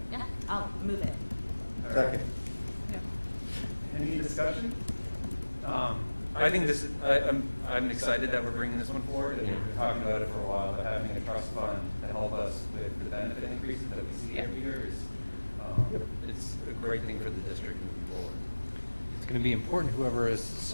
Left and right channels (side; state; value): both; inverted; correlation -1.00